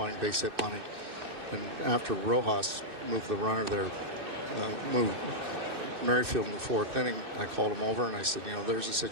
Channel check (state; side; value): late; left; 2.6 ms